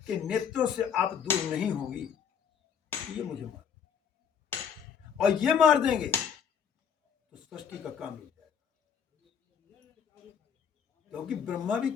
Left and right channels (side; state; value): right; quieter; 7.5 dB